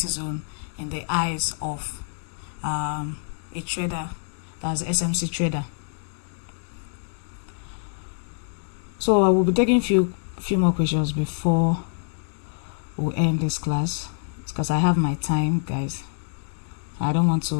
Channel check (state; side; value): silent; right; 58 dB below the other